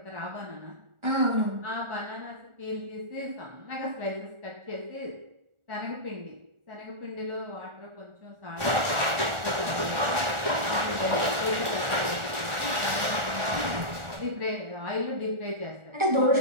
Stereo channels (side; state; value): left; late; 1.4 ms